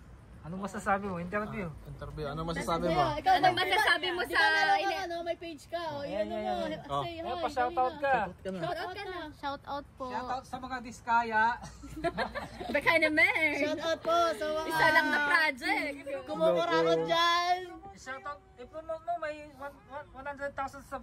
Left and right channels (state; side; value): identical; both; correlation 1.00